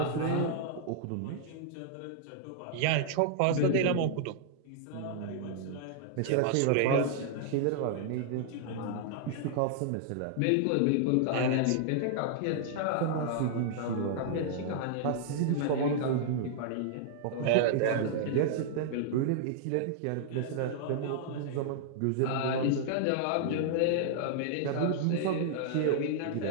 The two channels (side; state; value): both; different; correlation -0.01